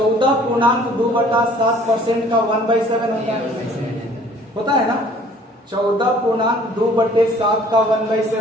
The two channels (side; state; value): both; normal; correlation 0.54